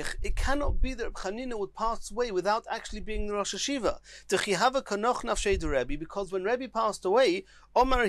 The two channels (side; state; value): both; identical; correlation 1.00